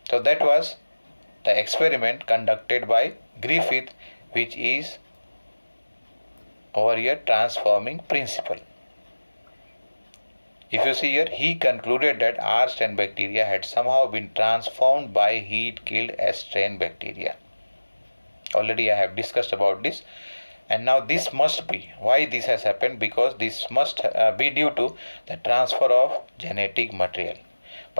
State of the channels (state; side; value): inverted; both; correlation -1.00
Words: So that was the experiment conducted by Griffith, which is over here transforming principle. If you see here, he concluded that R strain bacteria had somehow been transformed by heat killed S strain bacteria. Already I have discussed about this, and now this must be why this has happened, because this must be due to the transfer of genetic material.